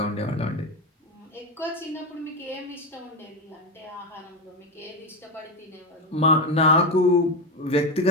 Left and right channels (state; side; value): normal; both; correlation 0.14